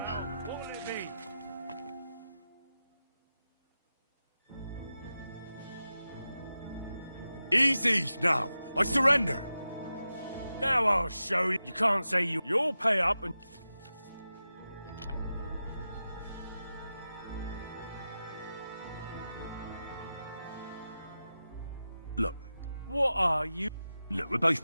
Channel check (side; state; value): both; inverted; correlation -0.92